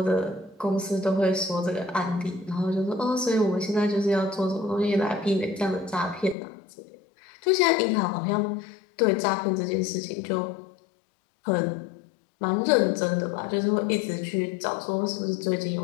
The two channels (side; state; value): right; drops out; at 6.4 s